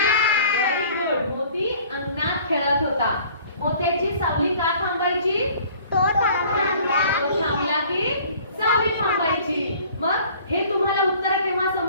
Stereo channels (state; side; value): inverted; both; correlation -0.51